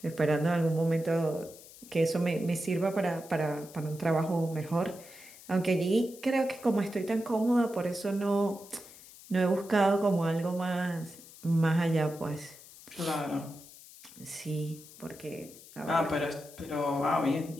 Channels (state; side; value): noise; left; hiss, 19 dB below the sound